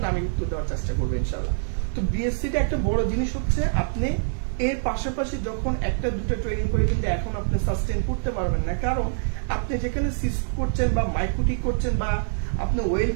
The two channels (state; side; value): silent; left; digital silence